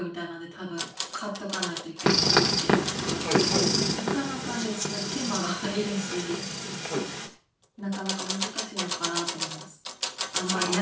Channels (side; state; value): both; identical; correlation 1.00